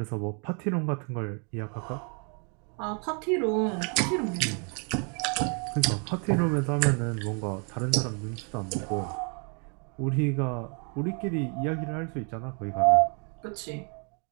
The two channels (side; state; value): left; quieter; 37.9 dB